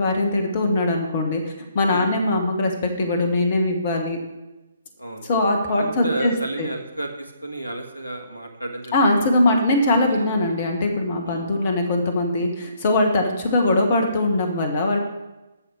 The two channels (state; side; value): inverted; both; correlation -0.67